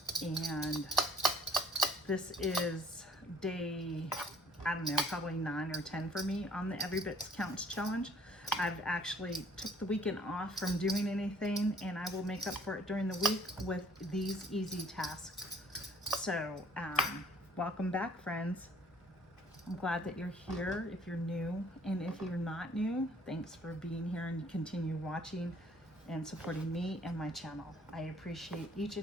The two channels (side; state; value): both; normal; correlation 0.58